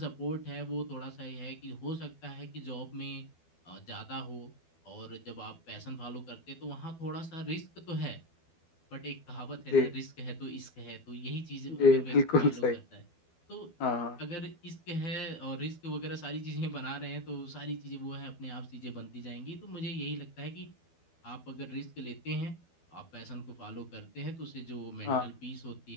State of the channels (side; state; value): right; late; 12 ms